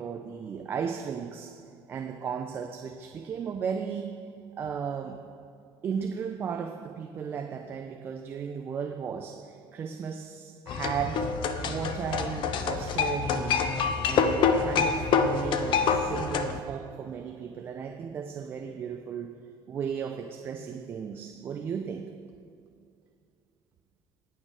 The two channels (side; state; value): both; normal; correlation 0.29